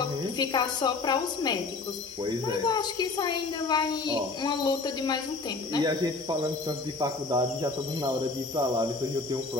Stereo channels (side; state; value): right; quieter; 3.8 dB